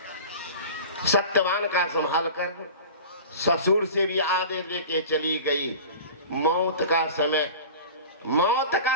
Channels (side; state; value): both; inverted; correlation -0.36